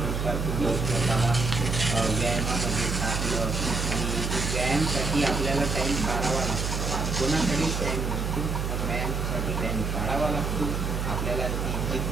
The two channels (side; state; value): right; noise; hum, 1 dB below the sound